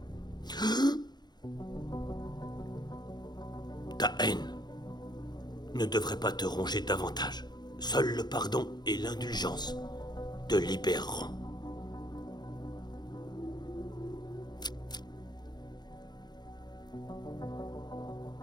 Ta haine ne devrait pas te ronger davantage. Seul le pardon et l'indulgence te libéreront.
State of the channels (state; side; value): late; right; 0.21 ms